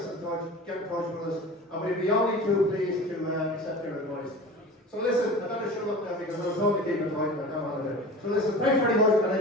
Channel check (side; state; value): both; normal; correlation 0.36